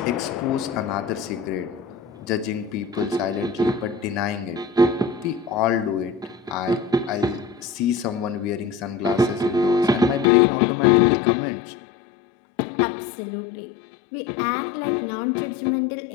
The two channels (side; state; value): right; drops out; at 10.2 s